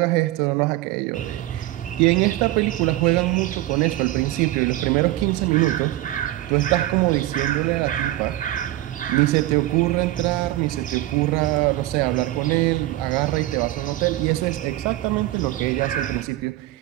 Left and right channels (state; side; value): quieter; left; 15.9 dB